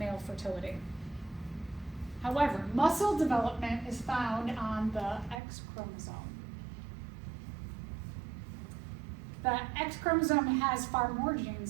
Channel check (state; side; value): drops out; left; at 5.4 s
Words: fertility. However, muscle development is found on the X chromosome. The X chromosome has far more